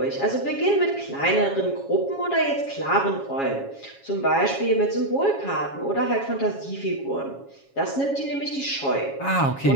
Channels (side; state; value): right; late; 7.3 ms